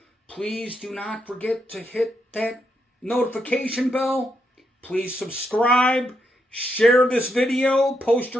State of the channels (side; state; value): both; normal; correlation 0.80